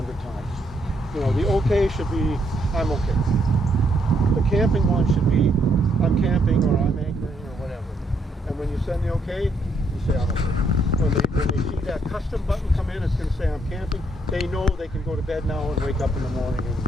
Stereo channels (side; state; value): both; normal; correlation 0.73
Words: times. You know, the OK should be, I'm okay. The camping one should be, I'm camping, or I'm anchoring, or whatever. And when you send the OK, you say I'm okay. When they see that custom button come in, it's going to say I'm camping. They know they can go to bed now and wake up in the morning, and